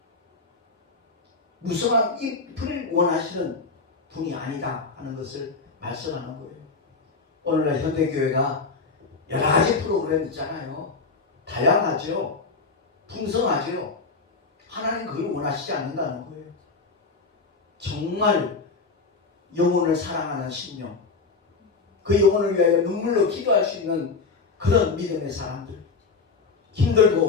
무성한 잎을 원하시는 분이 아니다 하는 것을 말씀하는 거예요. 오늘날 현대교회가 여러 가지 프로그램 있잖아요. 다양하죠. 풍성하죠. 하나님 그걸 원하시지 않는다는 거예요. 정말 영혼을 사랑하는 심령, 그 영혼을 위하여 눈물로 기도할 수 있는 그런 믿음의 사람들, 힘들고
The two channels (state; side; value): quieter; right; 4.3 dB